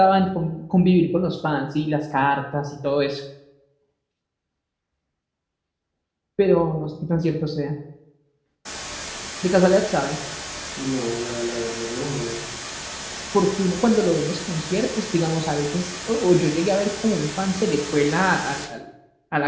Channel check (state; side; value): identical; both; correlation 1.00